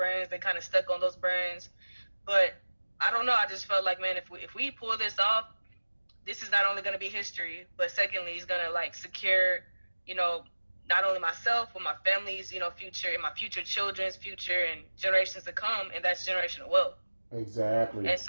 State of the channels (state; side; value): inverted; both; correlation -1.00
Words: They kind of stuck on those brands. But I don't know. I just felt like, man, if we pull this off, this is not only going to be history, but secondly, it's going to like secure, you know, not only myself, but my family's, you know, future, and my future children's future and generations to come. And that's generational wealth. Exactly. And